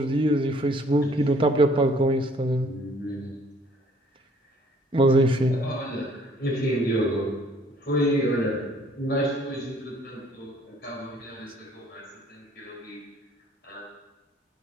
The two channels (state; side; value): normal; both; correlation 0.60